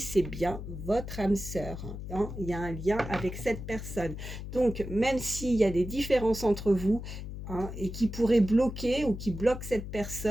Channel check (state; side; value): noise; left; hum, 8 dB below the sound